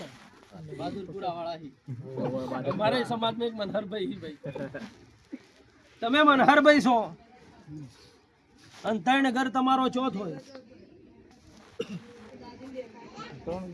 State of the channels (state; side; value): identical; both; correlation 1.00